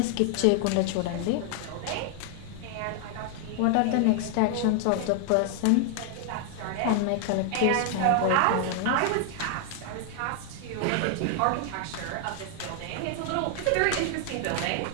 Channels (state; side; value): different; both; correlation 0.00